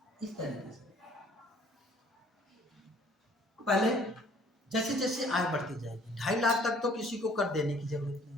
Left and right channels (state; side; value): normal; both; correlation 0.57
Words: इस तरीके से, पहले जैसे जैसे आय बढ़ती जाएगी, 2.5 लाख तक तो किसी को कर देने की जरूरत